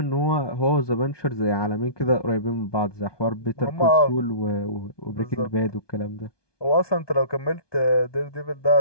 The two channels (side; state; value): right; late; 1.2 ms